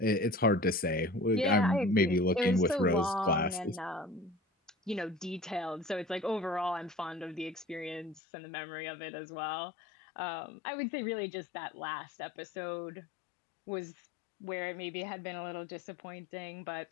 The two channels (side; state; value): right; drops out; at 8.2 s